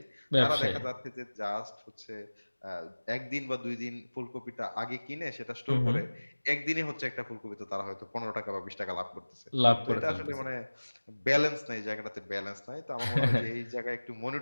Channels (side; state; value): both; inverted; correlation -1.00